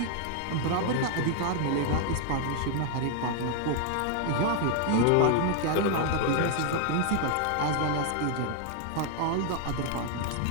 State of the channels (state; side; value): different; both; correlation 0.00